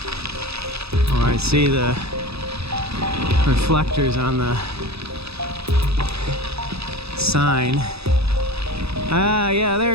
Oh, I see the reflectors on the sign. Ah, yeah,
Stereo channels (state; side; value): late; left; 0.78 ms